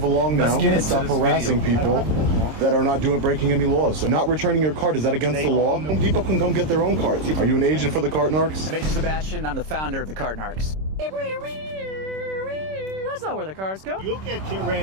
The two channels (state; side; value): late; left; 26 ms